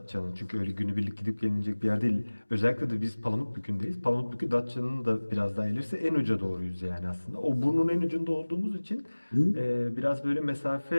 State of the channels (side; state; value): both; inverted; correlation -1.00